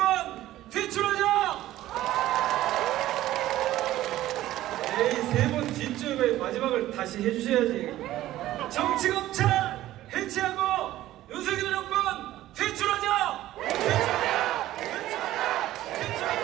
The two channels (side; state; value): left; quieter; 14.7 dB